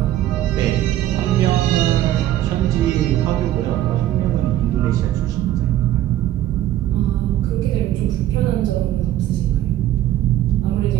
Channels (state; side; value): quieter; left; 13.2 dB